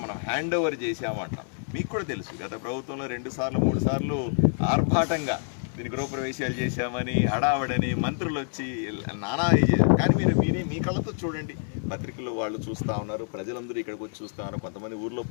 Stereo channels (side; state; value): right; silent; digital silence